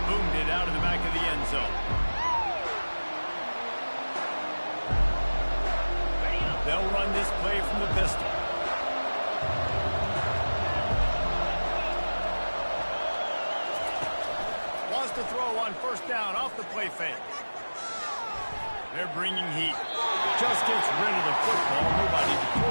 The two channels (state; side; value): inverted; both; correlation -1.00